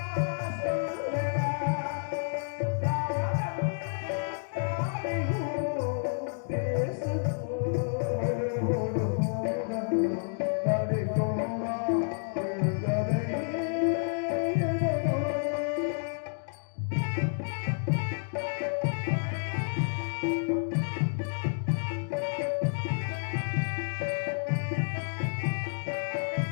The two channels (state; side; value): silent; right; digital silence